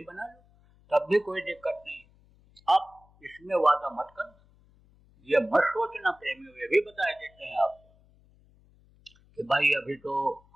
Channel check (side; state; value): left; noise; hum, 30 dB below the sound